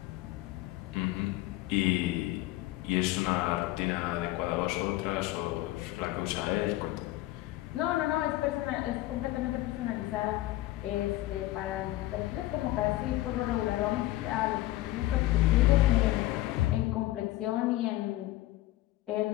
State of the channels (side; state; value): right; quieter; 16.9 dB